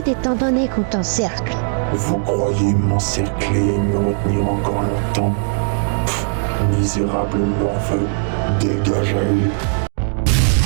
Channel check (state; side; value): silent; left; digital silence